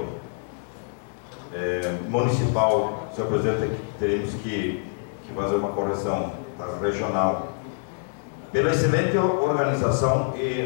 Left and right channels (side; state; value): right; silent; digital silence